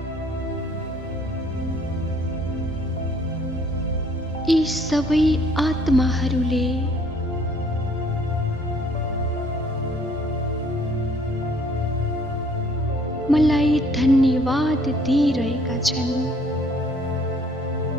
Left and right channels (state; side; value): normal; both; correlation 0.60